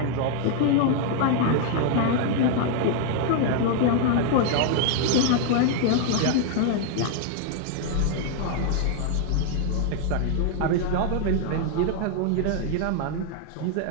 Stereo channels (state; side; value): different; both; correlation 0.00